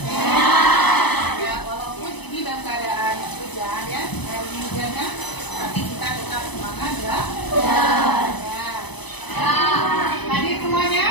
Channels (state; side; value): late; right; 0.99 ms